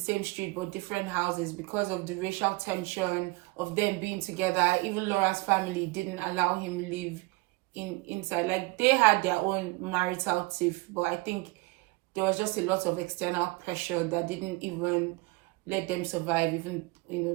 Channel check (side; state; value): left; quieter; 24.3 dB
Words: street, but different houses because of the racial tension of them being together. Even Laura's family didn't allow him live inside. Like, they had their own marital tiff, but I think there was just a lot of external pressure that didn't even let them survive, even, you know,